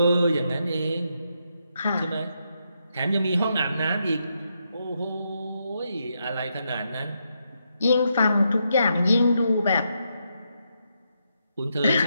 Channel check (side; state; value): both; inverted; correlation -0.81